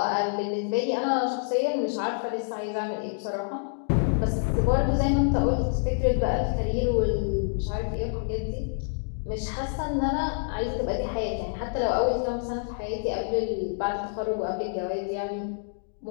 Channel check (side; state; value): right; silent; digital silence